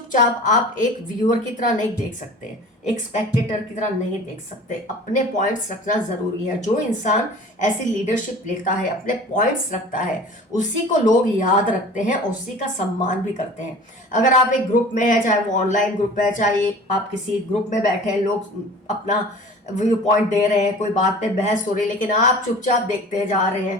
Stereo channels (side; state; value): both; normal; correlation 0.42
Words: आप एक व्यूअर की तरह नहीं देख सकते, एक स्पेक्टेटर की तरह नहीं देख सकते। अपने पॉइंट्स रखना ज़रूरी है। जो इंसान ऐसी लीडरशिप लेता है, अपने पॉइंट्स रखता है, उसी को लोग याद रखते हैं, उसी का सम्मान भी करते हैं। अगर आप एक ग्रुप में हैं, चाहे वो ऑनलाइन ग्रुप है, चाहे आप किसी ग्रुप में बैठे हैं, लोग अपना व्यू पॉइंट दे रहे हैं, कोई बात पे बहस हो रही है, लेकिन आप चुपचाप देखते जा रहे